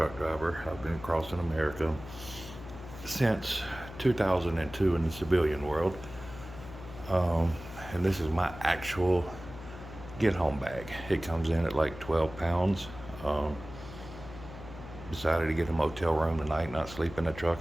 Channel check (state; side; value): noise; left; hum, 14 dB below the sound